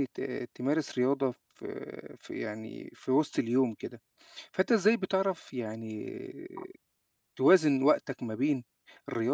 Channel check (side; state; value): both; identical; correlation 1.00